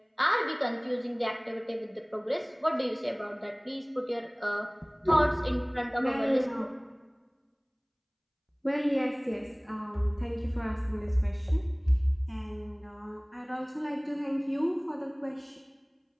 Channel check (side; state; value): both; identical; correlation 1.00